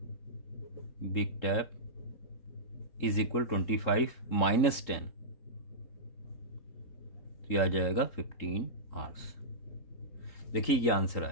big tap is equal 25 minus 10, तो यह आ जाएगा 15 hours। देखिए ये आंसर आ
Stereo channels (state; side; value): late; right; 3.8 ms